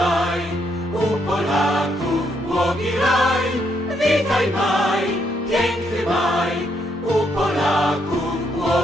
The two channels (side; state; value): both; normal; correlation 0.75